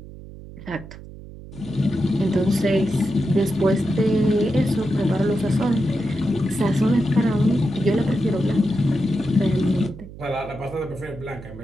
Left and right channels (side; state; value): right; noise; hum, 15 dB below the sound